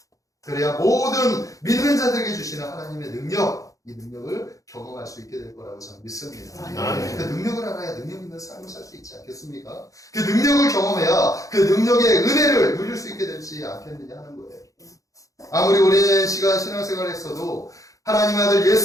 그래야 모든 믿는 자들에게 주시는 하나님의 능력, 이 능력을 경험할 수 있게 될 거라고 저는 믿습니다. 아멘. 그 능력을 알아야 능력 있는 삶을 살 수 있지 않겠습니까? 그 능력을 경험해야 그 능력의 은혜를 누릴 수 있게 되지 않겠느냐 하는 거예요. 아무리 오랜 시간 신앙생활을 했어도 하나님 아들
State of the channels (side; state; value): right; late; 0.16 ms